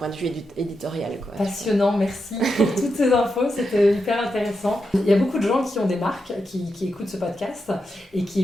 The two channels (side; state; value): both; normal; correlation 0.86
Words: de vue éditorial. Quoi. Passionnant, merci pour toutes ces infos, c'était hyper intéressant. Il y a beaucoup de gens qui ont des marques, qui écoutent ce podcast et qui